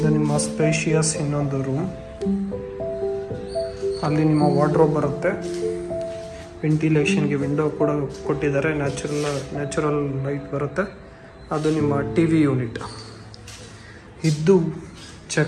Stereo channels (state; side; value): identical; both; correlation 1.00